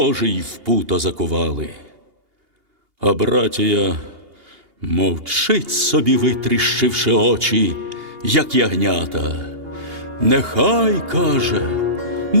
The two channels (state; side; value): late; left; 2.8 ms